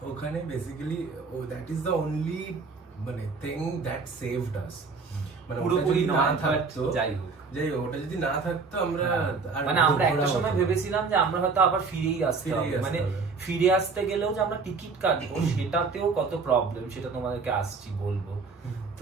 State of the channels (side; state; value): left; quieter; 4.6 dB